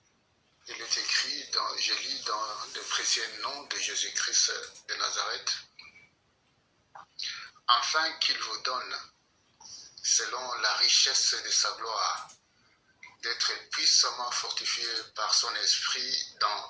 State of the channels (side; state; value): both; identical; correlation 1.00